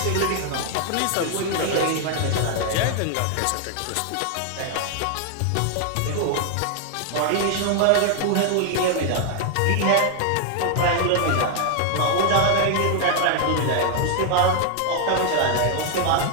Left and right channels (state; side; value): different; both; correlation 0.00